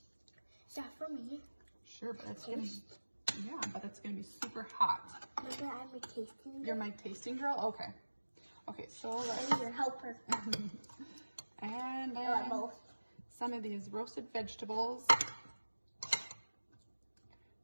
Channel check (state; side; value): inverted; both; correlation -1.00